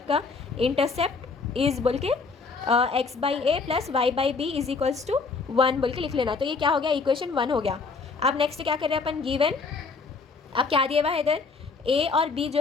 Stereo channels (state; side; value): quieter; right; 4.5 dB